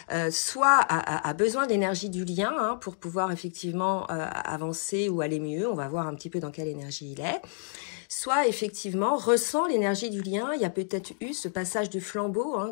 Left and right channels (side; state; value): right; silent; digital silence